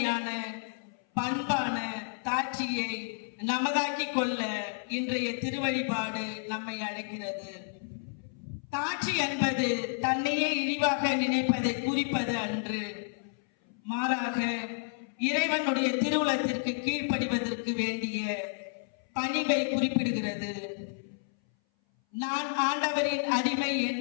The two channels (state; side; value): silent; right; 57 dB below the other